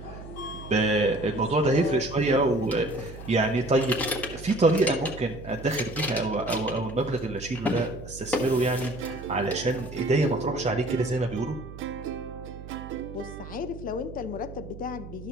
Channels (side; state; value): right; noise; hum, 13 dB below the sound